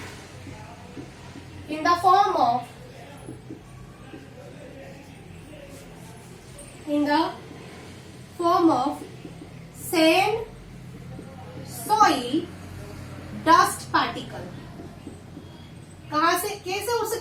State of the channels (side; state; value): both; identical; correlation 1.00